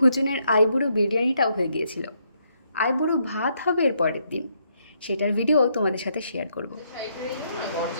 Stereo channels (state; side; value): inverted; both; correlation -0.75